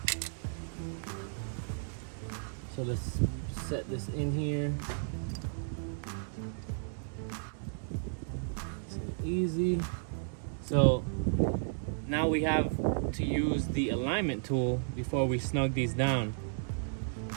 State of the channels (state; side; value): silent; left; digital silence